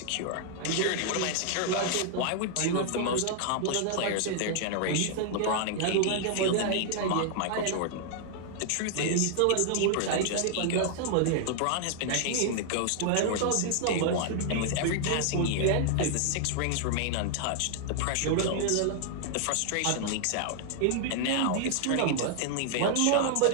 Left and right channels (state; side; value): different; both; correlation 0.00